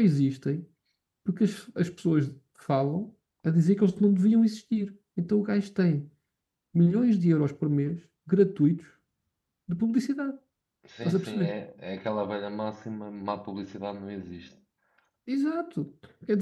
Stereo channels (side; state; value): both; identical; correlation 1.00